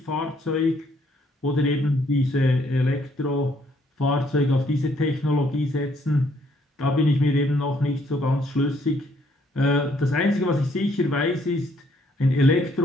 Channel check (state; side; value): normal; both; correlation 0.67